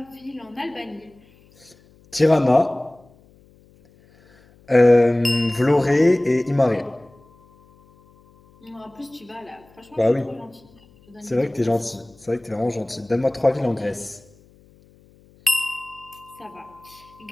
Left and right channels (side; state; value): left; noise; hum, 29 dB below the sound